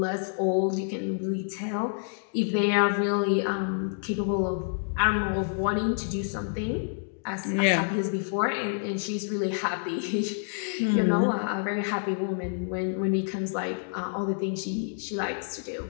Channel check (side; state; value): right; silent; digital silence